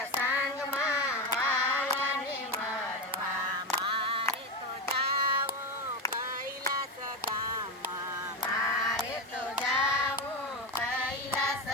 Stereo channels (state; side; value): normal; both; correlation 0.14